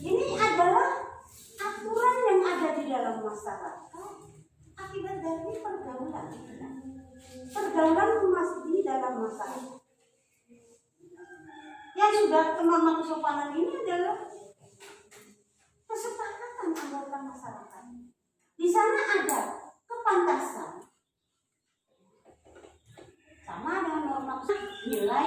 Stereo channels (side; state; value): both; identical; correlation 1.00